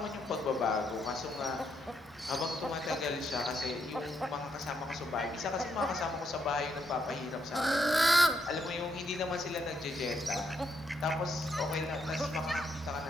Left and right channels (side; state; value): both; normal; correlation 0.77